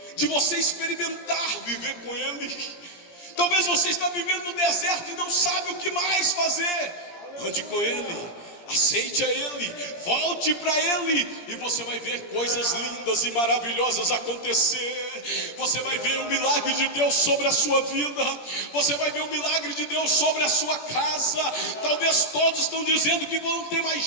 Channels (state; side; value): late; right; 17 ms